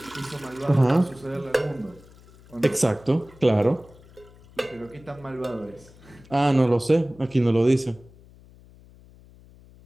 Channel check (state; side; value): noise; left; hum, 24 dB below the sound